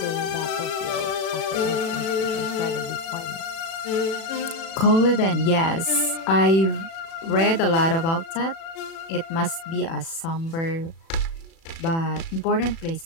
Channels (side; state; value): right; late; 36 ms